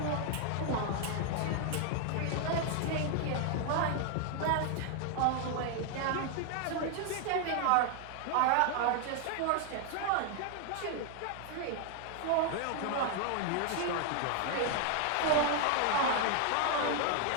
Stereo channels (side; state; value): both; different; correlation 0.00